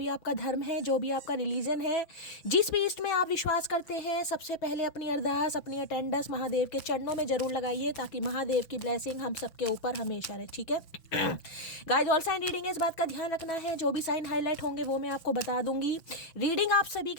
आपका धर्म है, जो भी आपका रिलीजन है, जिस भी ईस्ट में आप विश्वास करते हैं, सबसे पहले अपनी अरदास, अपनी अटेंडेंस महादेव के चरणों में जरूर लगाइए, ताकि महादेव की ब्लेसिंग हम सबके ऊपर हमेशा रहे। ठीक है गाइस, ऑल साइन रीडिंग है, इस बात का ध्यान रखना है। जो भी साइन हाईलाइट होंगे वो मैं आपको बता दूंगी। रीडिंग आप सभी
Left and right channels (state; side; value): late; right; 5.9 ms